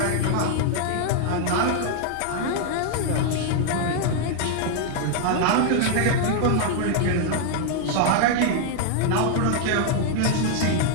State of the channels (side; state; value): both; different; correlation 0.00